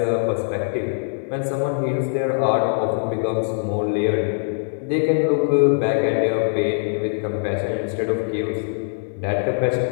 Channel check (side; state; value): right; silent; 62 dB below the other